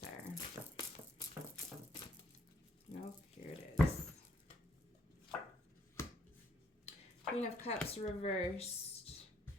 there. Nope, here it is. Queen of Cups reversed.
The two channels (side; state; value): both; normal; correlation 0.68